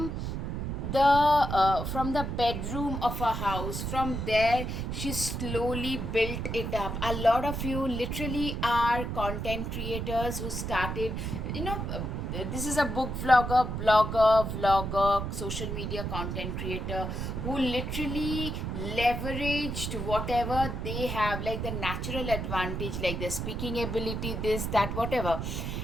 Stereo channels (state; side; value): noise; right; rumble, 3 dB below the sound